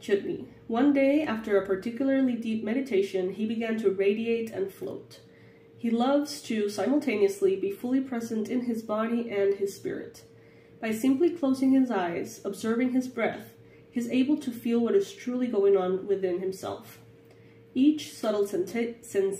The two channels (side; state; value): both; identical; correlation 1.00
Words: One day, after a particularly deep meditation, he began to radiate and float. He loves to simultaneously be fully present in his body and his spirit. By simply closing his eyes, observing his breath, he is able to feel what is truly going on within himself. Each subtle